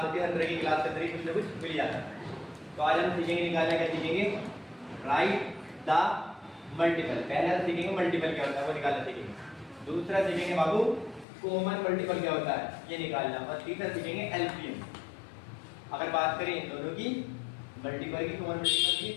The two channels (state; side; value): drops out; right; at 11.2 s